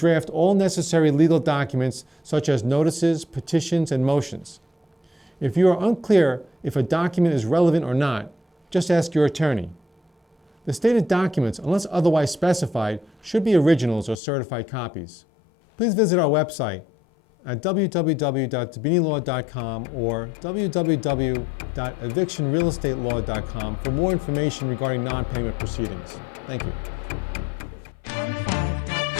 all necessary legal documents such as notices, petitions, and motions. If you are unclear if a document is relevant or not, just ask your attorney. The stated documents, unless otherwise specified, should be originals or certified copies. Please visit our website at www.dibbinilaw.com or www.evictionrealestatelaw.com for more information regarding non-payment proceedings. Thank you.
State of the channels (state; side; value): drops out; right; at 14.2 s